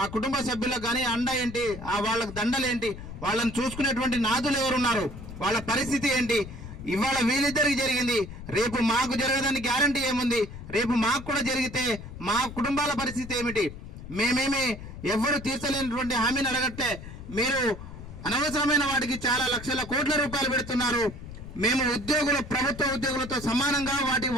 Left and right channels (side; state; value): left; noise; rumble, 12 dB below the sound